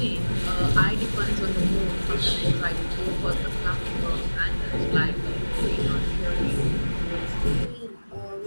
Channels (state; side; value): inverted; both; correlation -1.00